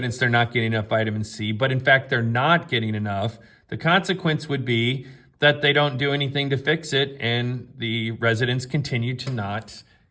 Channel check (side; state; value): both; identical; correlation 1.00